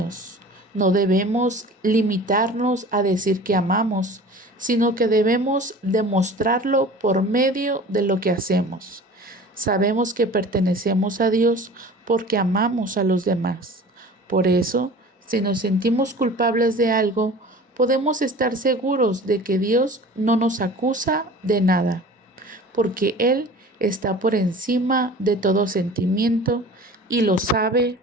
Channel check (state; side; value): normal; both; correlation 0.41